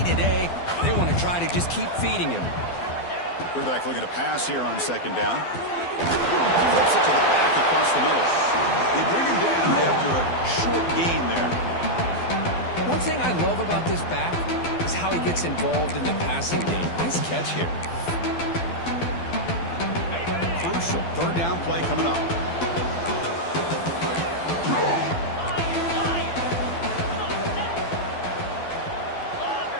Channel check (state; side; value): late; right; 12 ms